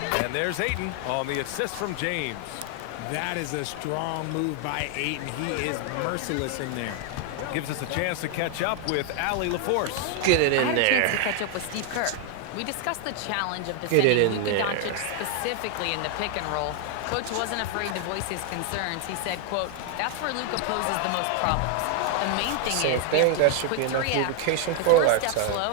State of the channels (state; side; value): different; both; correlation 0.00